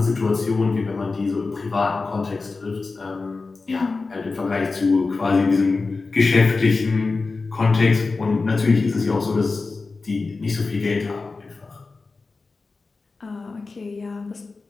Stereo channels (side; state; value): right; quieter; 4.0 dB